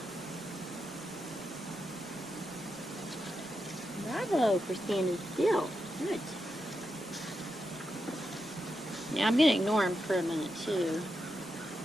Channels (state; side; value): normal; both; correlation 0.86